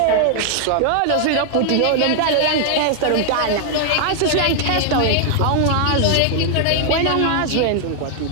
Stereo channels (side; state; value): both; different; correlation 0.00